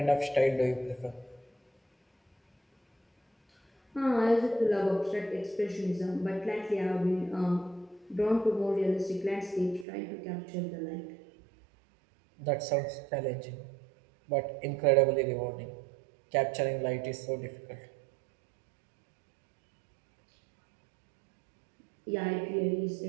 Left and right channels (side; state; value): left; drops out; at 9.9 s